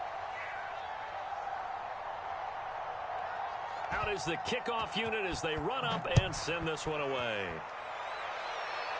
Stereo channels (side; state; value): both; identical; correlation 1.00